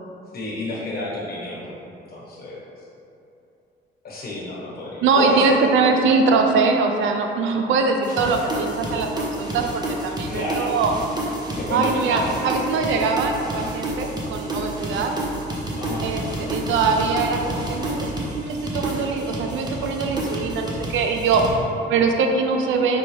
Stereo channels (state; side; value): quieter; left; 3.3 dB